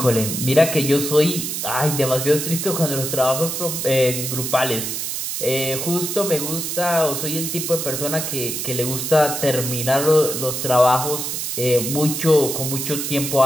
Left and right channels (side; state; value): right; noise; hiss, 3 dB below the sound